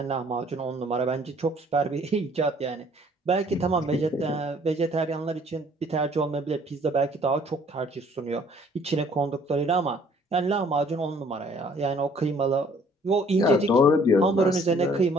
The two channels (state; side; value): normal; both; correlation 0.58